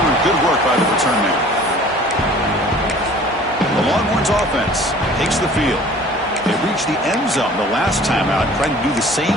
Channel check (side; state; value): both; normal; correlation 0.48